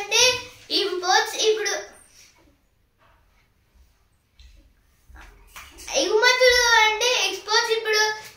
ఇంపోర్ట్స్. ఇప్పుడు ఎగుమతులు అంటే ఎక్స్పోర్ట్స్. ఇప్పుడు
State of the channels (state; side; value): identical; both; correlation 1.00